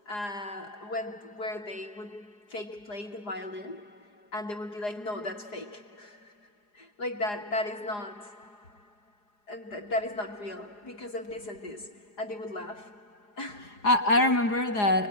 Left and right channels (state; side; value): late; right; 4.8 ms